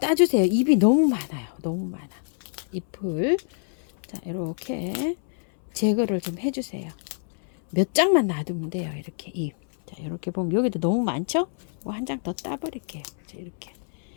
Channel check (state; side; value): silent; right; 61 dB below the other